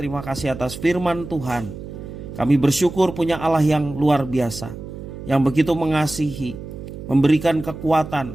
kasih atas firman Tuhan. Kami bersyukur punya Allah yang luar biasa, yang begitu mengasihi, memberikan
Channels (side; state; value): right; noise; hum, 11 dB below the sound